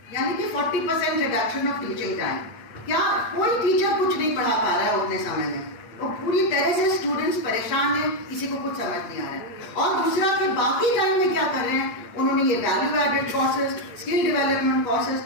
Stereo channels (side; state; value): right; late; 8.6 ms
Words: यानी कि 40% रिडक्शन ऑफ टीचिंग टाइम। क्या कोई टीचर कुछ नहीं पढ़ा पा रहा है उतने समय में, और पूरी तरह से स्टूडेंट्स परेशान हैं, किसी को कुछ समझ नहीं आ रहा है। और दूसरा कि बाकी टाइम में क्या कर रहे हैं, उन्होंने ये value added courses, skill development courses